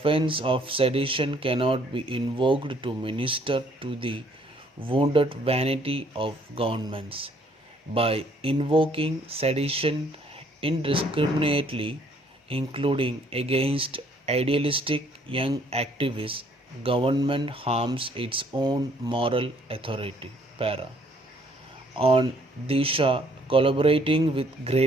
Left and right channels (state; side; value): normal; both; correlation 0.63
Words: of sedition cannot be invoked to minister to the wounded vanity of governments. By invoking sedition indiscriminately, including against idealistic young activists, government harms its own moral authority. Para. On Disha collaborating with